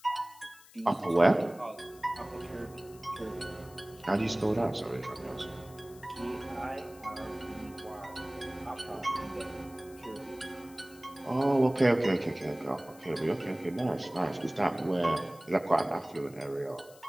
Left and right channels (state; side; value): noise; left; hiss, 23 dB below the sound